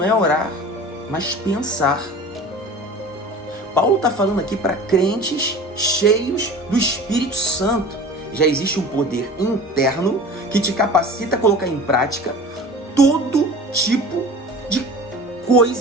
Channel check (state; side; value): normal; both; correlation 0.39